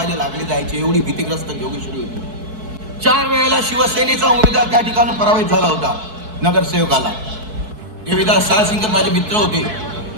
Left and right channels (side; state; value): left; late; 4.6 ms